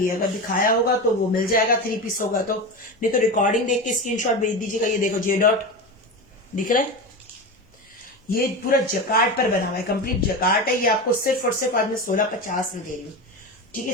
है, अगर दिखाया होगा तो वो मिल जाएगा, 3 पीस होगा तो। नहीं तो रिकॉर्डिंग देख के स्क्रीनशॉट भेज दीजिएगा। ये देखो जे डॉट दिख रहा है, ये पूरा जकार्ड पर बना हुआ है, कंप्लीट जकार्ड है। ये आपको सिर्फ और सिर्फ आज मैं 1650 में दे रही हूँ, ठीक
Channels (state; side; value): normal; both; correlation 0.23